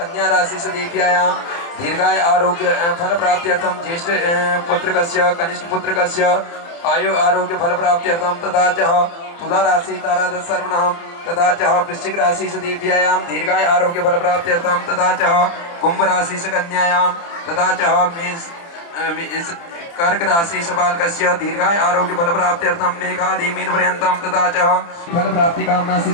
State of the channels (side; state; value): right; late; 29 ms